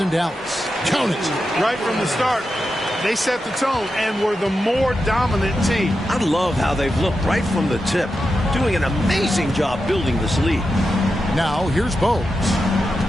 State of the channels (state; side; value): normal; both; correlation 0.89